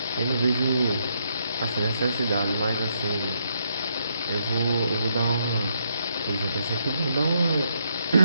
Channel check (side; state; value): both; inverted; correlation -0.76